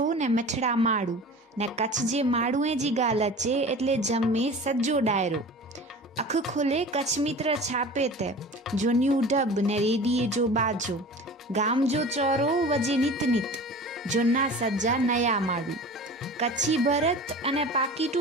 ने मठड़ा माड़ू ने कच्छ जे माड़ूए जी गाल अचे एटले जमे सज्जो डायरो। अख खोले कच्छ मित्र छापे ते जोन्यू डब ने रेडिये जो बाजो गाम जो चौरो वजे नित नित जोना सज्जा नया माड़ू। कच्छी भरत अने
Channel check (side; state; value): both; normal; correlation 0.38